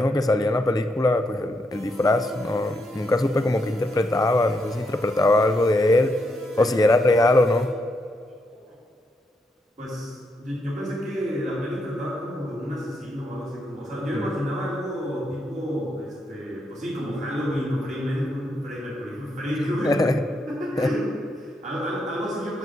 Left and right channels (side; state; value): both; normal; correlation 0.79